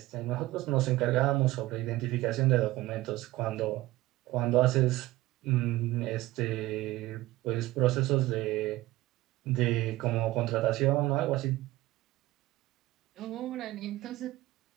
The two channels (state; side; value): quieter; left; 17.6 dB